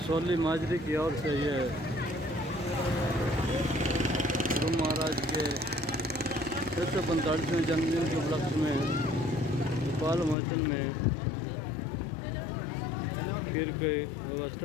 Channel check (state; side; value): drops out; right; at 10.4 s